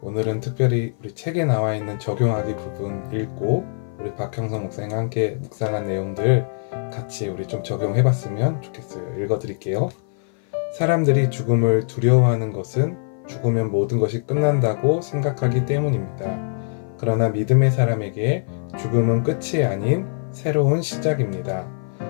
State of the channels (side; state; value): right; silent; 56 dB below the other